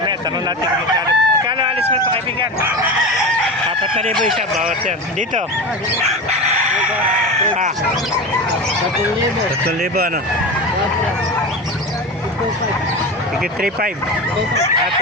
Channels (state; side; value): normal; both; correlation 0.25